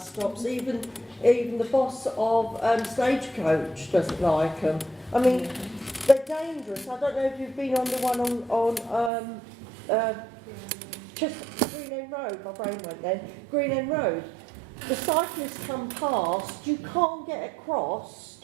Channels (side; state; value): left; drops out; at 9.1 s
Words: stops. Even the boss of Stagecoach doesn't like them. I mean, they're dangerous. I don't know if you've been on the one on Green End Road. My brain went then. Green End Road. The cyclists come past. You can't get across.